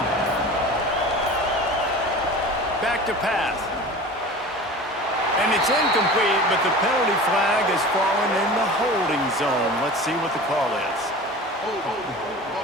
Back to pass. And it's incomplete, but the penalty flag has fallen in the holding zone. Let's see what the call is.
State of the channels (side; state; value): both; normal; correlation 0.37